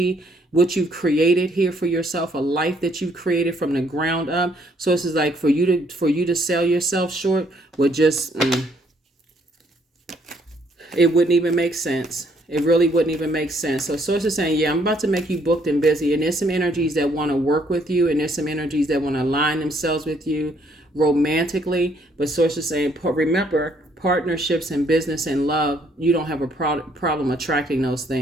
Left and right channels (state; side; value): normal; both; correlation 0.67